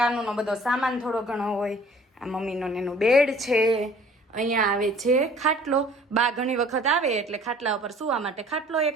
બધો સામાન થોડો ઘણો હોય. આ મમ્મીનો એનું બેડ છે. અહીંયા આવે છે ખાટલો. બા ઘણી વખત આવે એટલે ખાટલા ઉપર સૂવા માટે ખાટલો એક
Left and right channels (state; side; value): normal; both; correlation 0.53